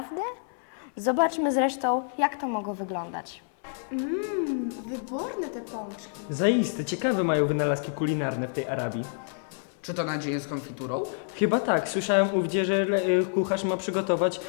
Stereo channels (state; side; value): silent; right; 59 dB below the other